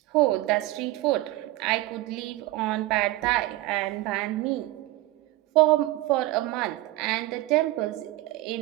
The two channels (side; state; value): left; quieter; 18.0 dB